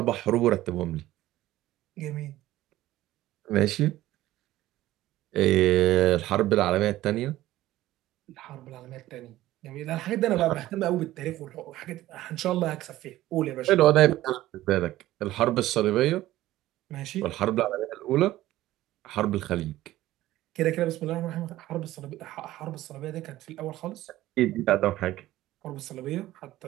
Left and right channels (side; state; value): left; quieter; 15.5 dB